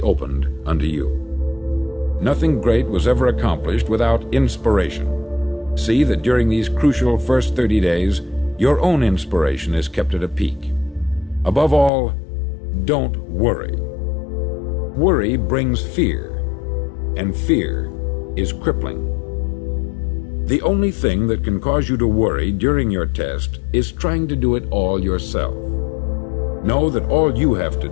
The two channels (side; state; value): right; drops out; at 11.9 s